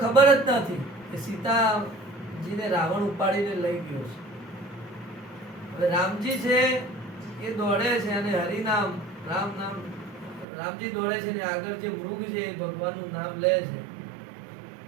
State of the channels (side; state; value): left; drops out; at 10.5 s